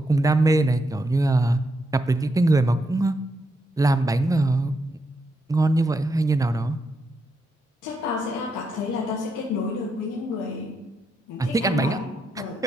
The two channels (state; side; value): normal; both; correlation 0.81